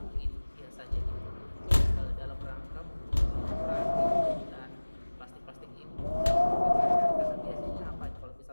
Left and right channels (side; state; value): both; inverted; correlation -1.00